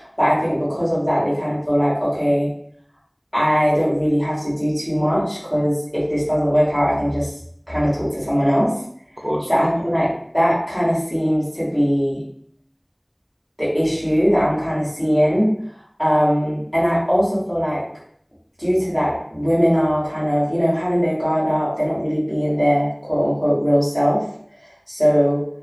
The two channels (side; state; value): both; identical; correlation 1.00